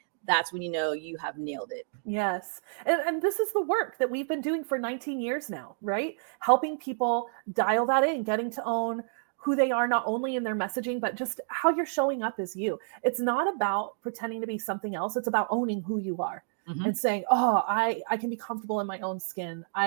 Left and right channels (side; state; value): left; silent; digital silence